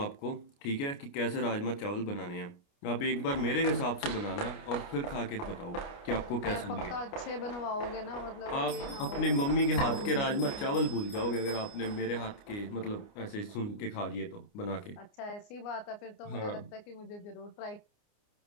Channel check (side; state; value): right; late; 29 ms